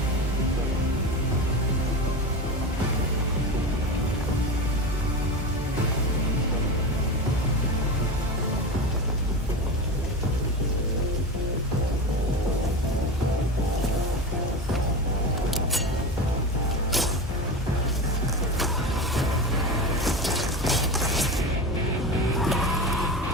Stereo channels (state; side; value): normal; both; correlation 0.24